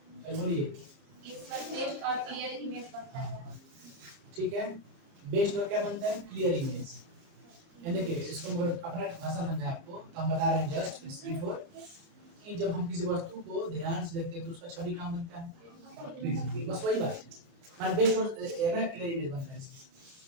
बोलिए। इसका बेस्ट और क्लियर इमेज बनता है। ठीक है, बेस्ड और क्या बनता है? Clear image. यानी कि इसको मैं अपना भाषा समझाएं आपको, तो हम बता रहे हैं जस्ट बिफोर कि जब हम किसी वस्तु को ध्यान से देखते हैं, तो उसका छवि कहाँ बनता है? बस वही बात है, मान बेस्ड और ना क्लियर इमेज बनता है।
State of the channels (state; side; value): late; left; 30 ms